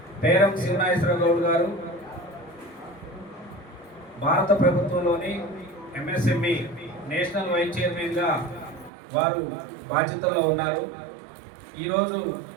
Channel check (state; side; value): drops out; left; at 8.9 s